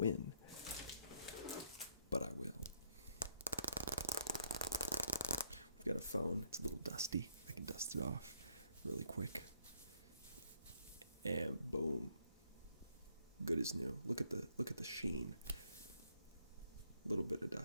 but I will. We've got a phone. It's a little dusty. I can dust it off really quick. And boom. Good as new. Look at the sheen. A little bit of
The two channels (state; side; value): inverted; both; correlation -0.70